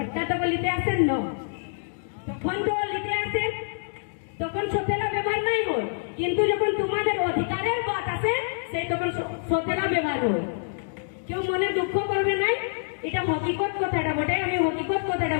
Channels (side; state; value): right; silent; digital silence